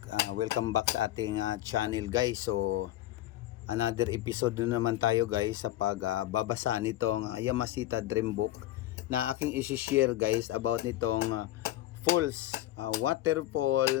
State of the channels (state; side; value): quieter; right; 14.7 dB